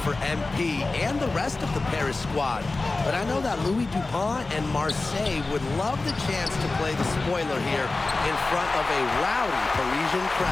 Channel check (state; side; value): quieter; right; 3.4 dB